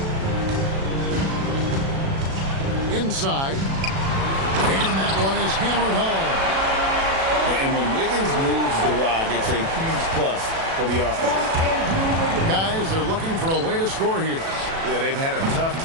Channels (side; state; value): left; late; 36 ms